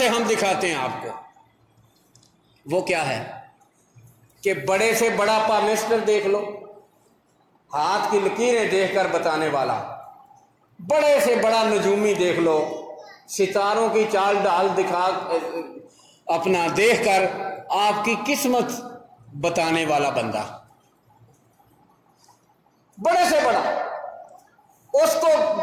ہم دکھاتے ہیں آپ کو۔ وہ کیا ہے کہ بڑے سے بڑا پامسٹر دیکھ لو، ہاتھ کی لکیریں دیکھ کر بتانے والا، بڑے سے بڑا نجومی دیکھ لو، ستاروں کی چال ڈال دکھا اپنا دیکھ کر آپ کی قسمت بتانے والا بندہ، بڑے سے بڑا، اس کو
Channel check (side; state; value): both; identical; correlation 1.00